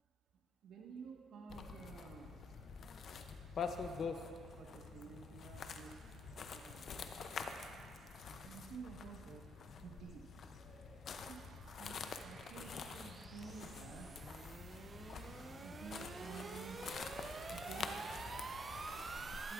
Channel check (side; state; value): both; normal; correlation 0.73